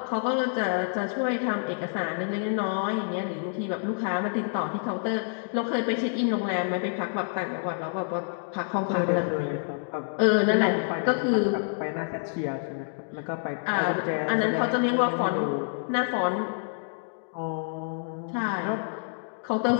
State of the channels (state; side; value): silent; right; digital silence